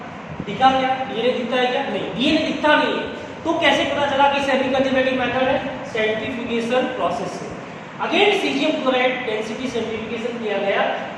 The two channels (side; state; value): both; identical; correlation 1.00